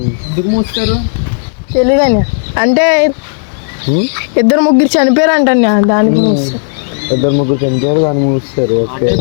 మూస్తారు తెలీదండి, అంటే ఇద్దరు ముగ్గురు చనిపోయారు అంటండి, దానికి మూస్తారు. ఇద్దరు ముగ్గురు చనిపోయారు, దాన్ని మూస్తారు.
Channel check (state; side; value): silent; right; digital silence